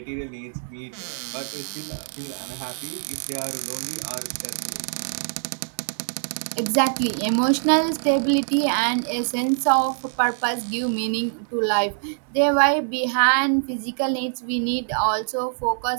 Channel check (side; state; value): left; silent; digital silence